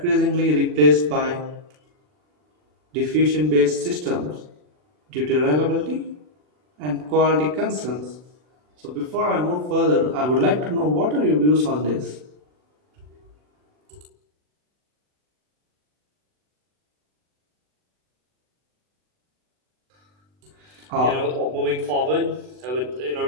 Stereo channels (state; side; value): late; left; 40 ms